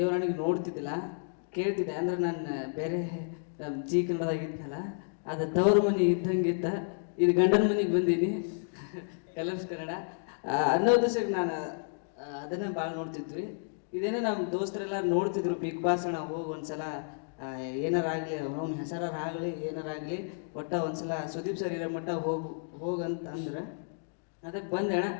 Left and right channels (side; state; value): right; silent; digital silence